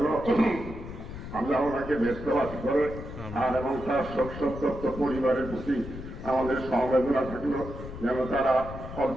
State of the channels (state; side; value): noise; left; rumble, 10 dB below the sound